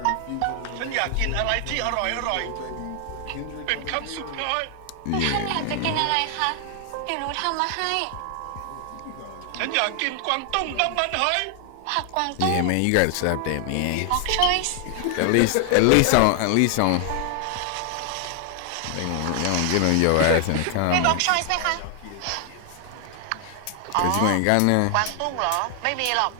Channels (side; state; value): both; different; correlation 0.00